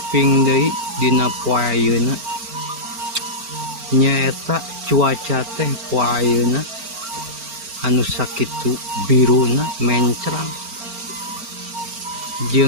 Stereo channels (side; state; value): left; late; 4.4 ms